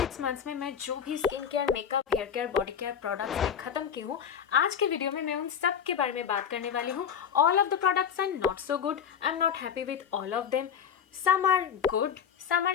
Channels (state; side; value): quieter; right; 7.9 dB